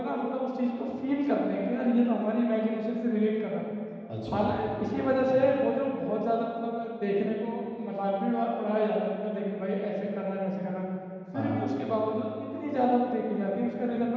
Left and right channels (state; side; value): identical; both; correlation 1.00